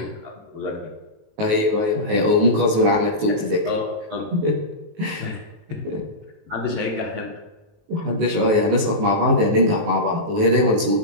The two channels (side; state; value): left; late; 19 ms